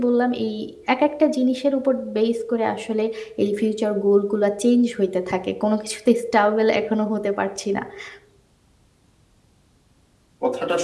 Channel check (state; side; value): identical; both; correlation 1.00